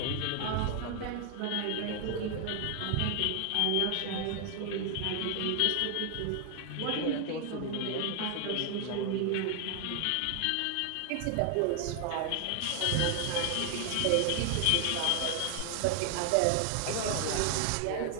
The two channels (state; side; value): different; both; correlation 0.00